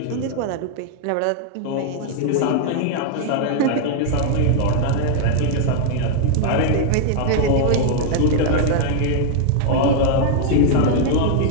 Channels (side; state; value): both; different; correlation -0.01